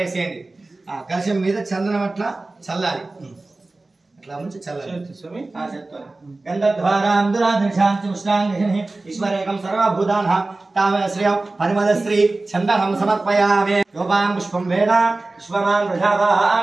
కలశం మీద చందనం అట్లా చల్లాలి అట్లా ముంచి చల్లాలి స్వామి చెప్తాను గంధద్వారాం దురాదర్శాంతి ఉష్ణాంగిని ఈశ్వరేకం సర్వభూతానాం తామశ్రియం పరిమల శ్రీ చందనం సమర్పయామి యోపాం పుష్పం వేద విశ్వమాన్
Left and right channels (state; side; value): quieter; left; 3.2 dB